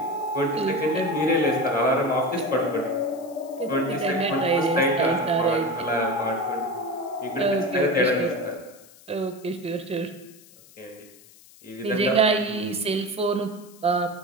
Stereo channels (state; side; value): noise; left; hiss, 24 dB below the sound